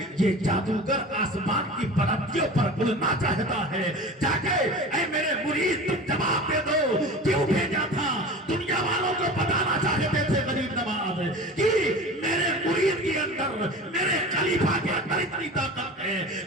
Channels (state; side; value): normal; both; correlation 0.36